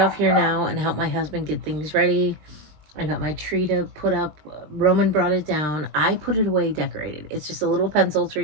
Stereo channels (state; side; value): late; left; 20 ms